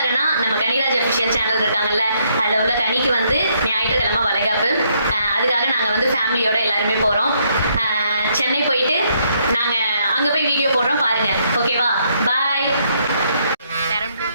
நம்ம கனிராஜ் அஃபிஷியல் சேனல் இருக்காங்கல்ல, அதில் உள்ள கனிக்கு வந்து ஞாயிற்றுக்கிழமை வளைகாப்பு. அதுக்காக நாங்கள் வந்து ஃபேமிலியோட எல்லாருமே போகிறோம். சென்னை போயிட்டு நாங்கள் அங்கே போய் வீடியோ போடுறோம், பாருங்க. ஓகேவா? பாய்.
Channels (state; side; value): inverted; both; correlation -0.72